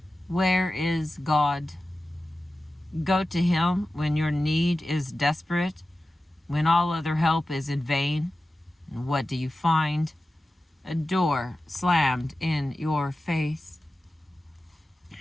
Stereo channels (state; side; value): normal; both; correlation 0.94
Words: Where is God? Go to him when your need is desperate, when all other help is in vain. And what do you find? A door slammed in your face.